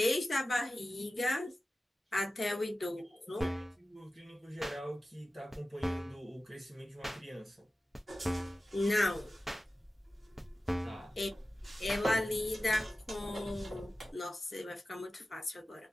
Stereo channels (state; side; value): normal; both; correlation 0.95